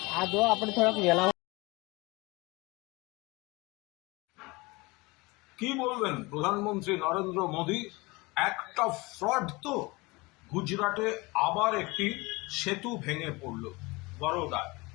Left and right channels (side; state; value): right; quieter; 24.1 dB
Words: આ જો આપણે થોડાક વેલા কি বলবেন প্রধানমন্ত্রী নরেন্দ্র মোদী একটা ফ্রড তো গুজরাটে আবার একটি সেতু ভেঙে পড়ল বরোদায়